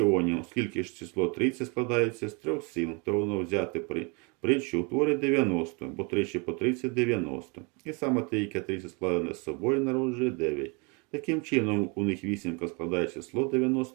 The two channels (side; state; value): left; quieter; 32.0 dB